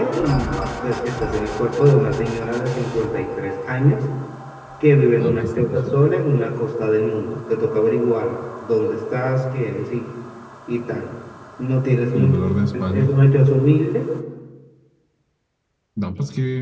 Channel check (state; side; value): identical; both; correlation 1.00